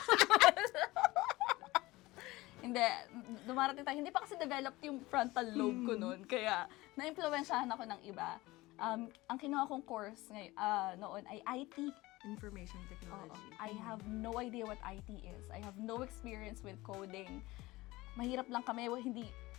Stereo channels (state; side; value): quieter; right; 19.9 dB